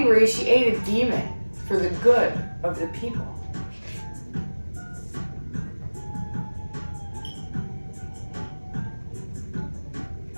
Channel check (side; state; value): both; inverted; correlation -1.00